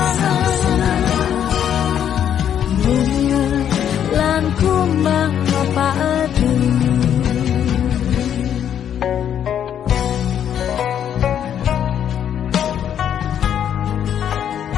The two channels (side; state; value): right; quieter; 9.4 dB